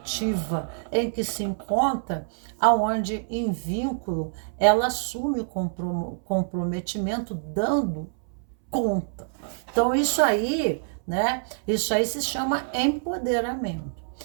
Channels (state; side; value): silent; left; 61 dB below the other